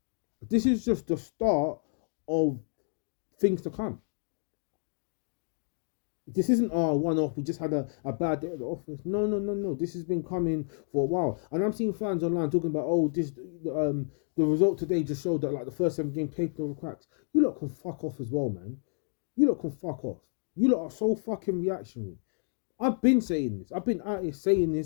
This is just the start of things to come. This isn't our one-off. We just had a bad day at the office. No. This has been coming for a while, and I'm seeing fans online talking about, the result today just showed that like the first 7 games taking over cracks. You lot can fuck off as well, man. You lot can fuck off. You lot are so fucking reactionary. I've been saying this. I've been out here saying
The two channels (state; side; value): silent; right; digital silence